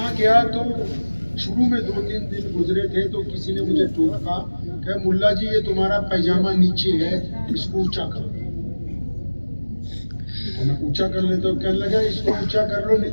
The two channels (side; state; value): both; inverted; correlation -1.00